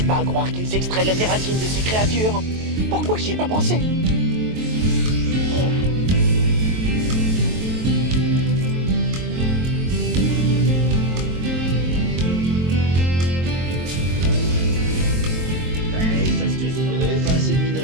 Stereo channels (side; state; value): left; late; 23 ms